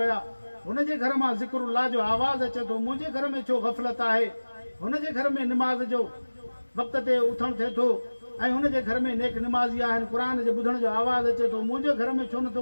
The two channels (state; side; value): inverted; both; correlation -1.00